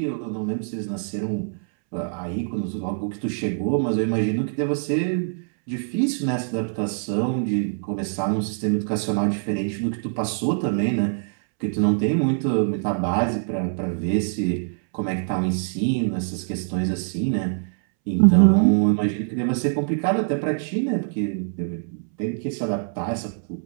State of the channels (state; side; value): silent; left; 63 dB below the other